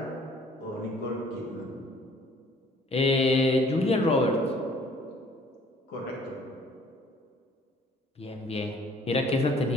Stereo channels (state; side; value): normal; both; correlation 0.57